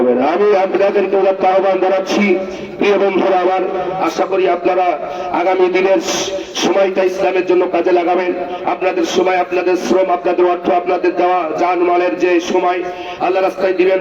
না। আমি আপনাদেরকে আহ্বান জানাচ্ছি, প্রিয় বন্ধুরা আমার, আশা করি আপনারা আগামী দিনের সময়টা ইসলামের জন্য কাজে লাগাবেন। আপনাদের সময়, আপনাদের শ্রম, আপনাদের অর্থ, আপনাদের দেওয়া জানমালের যে সময় আল্লাহ রাস্তায় দিবেন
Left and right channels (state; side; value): identical; both; correlation 1.00